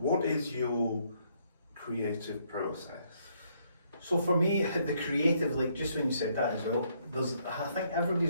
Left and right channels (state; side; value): inverted; both; correlation -0.70